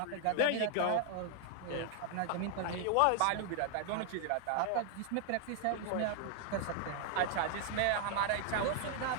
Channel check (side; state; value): both; different; correlation 0.00